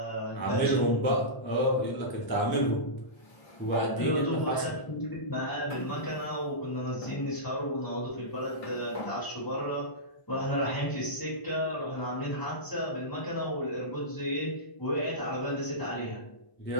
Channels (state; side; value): late; right; 1.0 ms